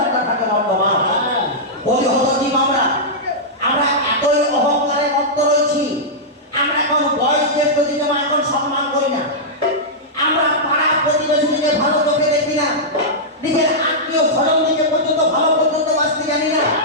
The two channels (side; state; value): both; normal; correlation -0.11